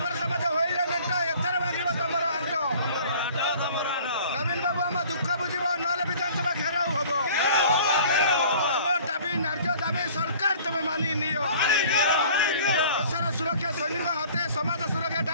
समाज होइले मेंट एथर मागिबो तमरो आंटो नवीन बाबू हम दुख बुझिबो नले विधानसभा घेराव हबो हमर दाबी न्याय दाबी सरकार तुम मानि नियो देशर सुरक्षा सैनिक हाथे समाज सुरक्षा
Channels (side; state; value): both; inverted; correlation -0.49